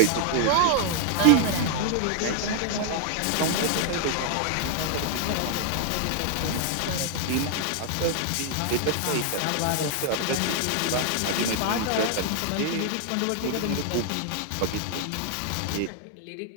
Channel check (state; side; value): different; both; correlation 0.00